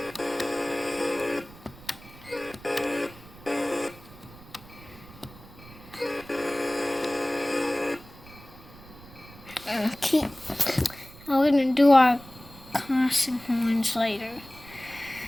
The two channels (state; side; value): noise; right; rumble, 20 dB below the sound